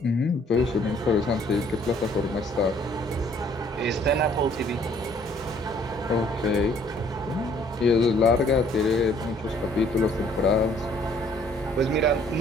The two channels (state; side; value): normal; both; correlation 0.60